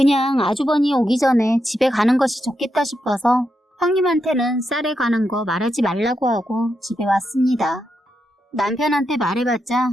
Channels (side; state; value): both; normal; correlation 0.84